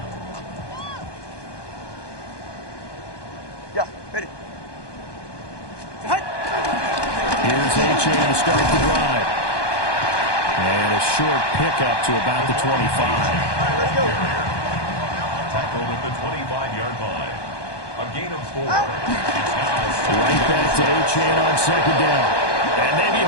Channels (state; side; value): late; right; 1.2 ms